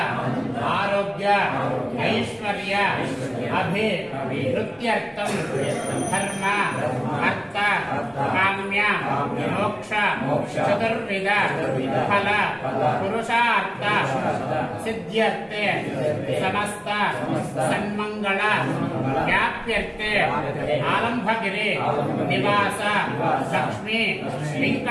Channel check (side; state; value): both; identical; correlation 1.00